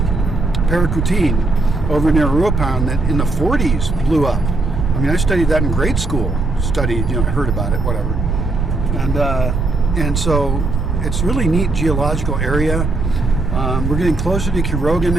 Paracutin over near Ruapan that in the 40s blew up. I mean, I studied that in grade school. Heard about it, whatever. And so it's really neat geological area. We're getting closer to Quiroga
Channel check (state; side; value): noise; right; rumble, 2 dB below the sound